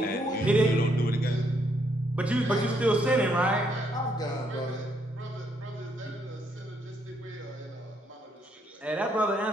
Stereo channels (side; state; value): both; normal; correlation 0.73